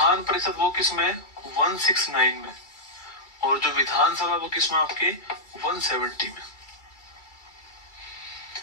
परिषद वो किसमें, 169 में, और जो विधानसभा वो किसमें, आपके 170 में।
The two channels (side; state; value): right; late; 2.3 ms